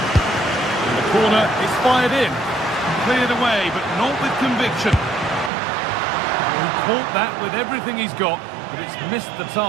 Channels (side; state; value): left; drops out; at 5.5 s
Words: And the corner is fired in. Cleared away, but not with conviction. He caught that with everything he's got, but it's missed the